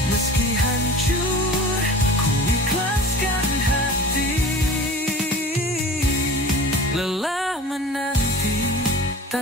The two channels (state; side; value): normal; both; correlation 0.39